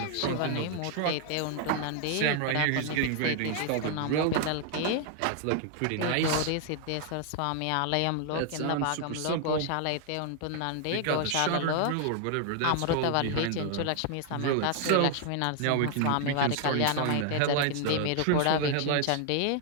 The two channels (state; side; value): different; both; correlation 0.00